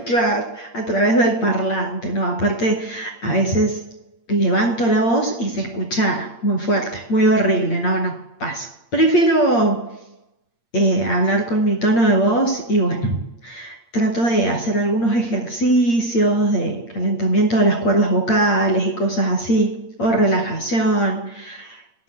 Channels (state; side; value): late; right; 8.6 ms